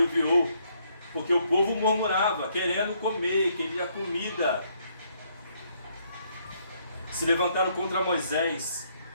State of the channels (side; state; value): both; inverted; correlation -0.71